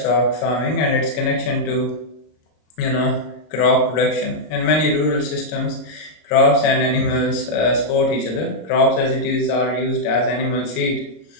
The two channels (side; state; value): right; late; 26 ms